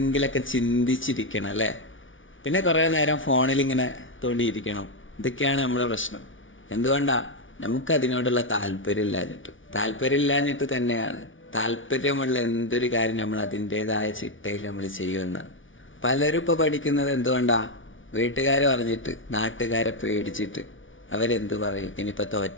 ചിന്തിച്ചിരിക്കണം അല്ലേ? പിന്നെ കുറേ നേരം ഫോണിലിങ്ങനെ തോണ്ടിയിരിക്കണം. ഇതൊക്കെയാണ് നമ്മുടെ പ്രശ്നം. എന്തുകൊണ്ടാ? നമുക്കതിനോടുള്ള താല്പര്യമില്ലാഞ്ഞിട്ട് തന്നെയാണ്. താല്പര്യമുള്ള എന്തൊരു കാര്യം നമ്മൾ അതിൻ്റേതായ ചിട്ടയിൽ നമ്മൾ ചെയ്യുമെന്ന്. പലരും ഇപ്പോൾ പഠിക്കുന്നത് എന്തുകൊണ്ടാ? വീട്ടുകാർ പറഞ്ഞിട്ട്, നാട്ടുകാരെ പേടിച്ചിട്ട്. അവരെന്ത് പറയും? ഇനിയിപ്പോൾ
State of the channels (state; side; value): late; right; 0.57 ms